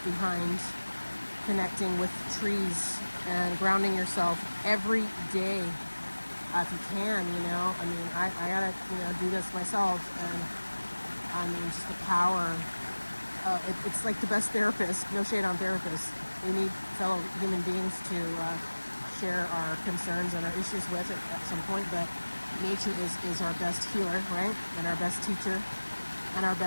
connecting with trees and grounding yourself every day, if you can. I mean, I gotta do this myself, and I mean, just the power. It's like the best therapist. No shade on therapists. We need fellow human beings to share our concerns and our issues with at some point, but nature is our best healer, right? And our best teacher and our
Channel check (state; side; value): inverted; both; correlation -1.00